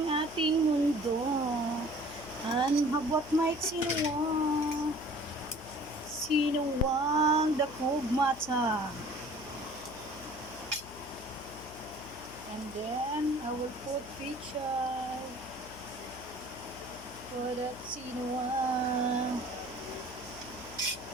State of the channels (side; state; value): left; noise; hum, 16 dB below the sound